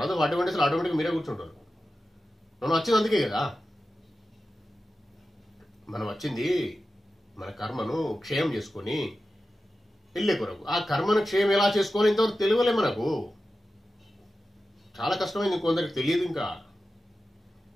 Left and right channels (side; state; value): both; normal; correlation 0.93